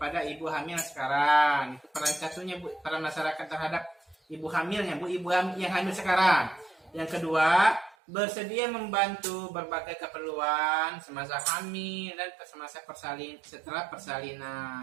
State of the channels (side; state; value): left; drops out; at 8.0 s